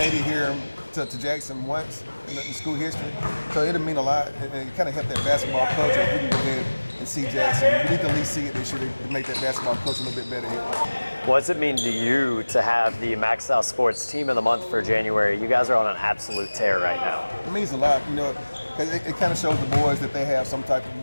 it here to Jackson once in school history, so it'll mean a lot, and it kind of help that basketball culture. If we can go ahead and see Jackson, we need to at least see it this year to make that basketball culture a little bit better here. What does it mean to you to have the MaxxSouth Sports Team of the Month for January? You guys are on an absolute tear right now. It means a lot, you know, because it kind of shows the boys that they have something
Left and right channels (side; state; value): both; inverted; correlation -1.00